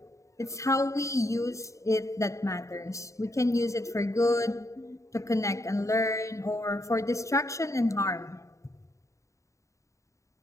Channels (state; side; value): late; right; 0.15 ms